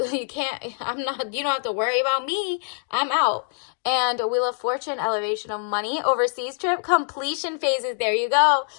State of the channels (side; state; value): right; silent; digital silence